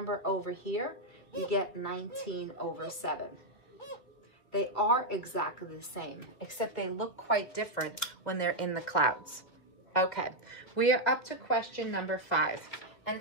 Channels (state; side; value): late; right; 2.3 ms